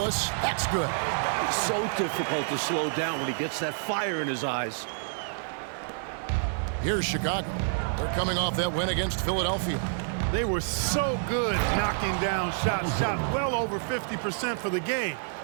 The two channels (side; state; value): left; silent; 57 dB below the other